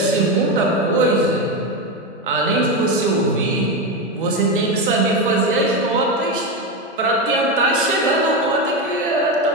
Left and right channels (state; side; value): normal; both; correlation 0.14